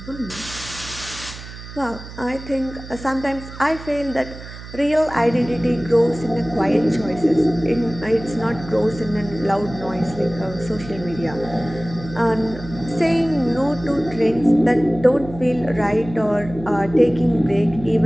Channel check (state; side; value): noise; right; hum, 14 dB below the sound